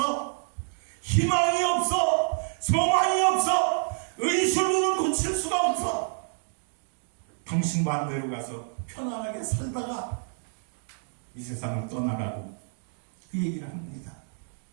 희망이 없어. 소망이 없어. 의술로는 고칠 수가 없어. 당신 반대로 가서 편안하게 살다가 이 세상을 떠나가고 그 얘기를 합니다.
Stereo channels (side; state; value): left; silent; digital silence